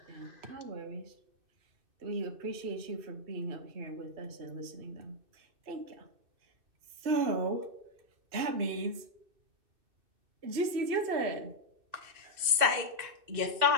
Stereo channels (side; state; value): left; late; 2.6 ms